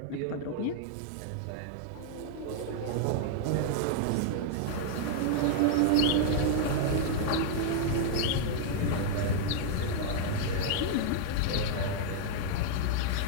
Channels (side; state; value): both; different; correlation -0.01